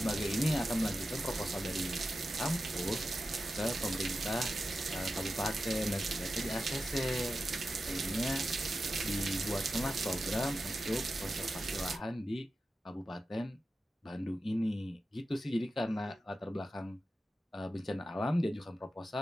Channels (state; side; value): normal; both; correlation 0.91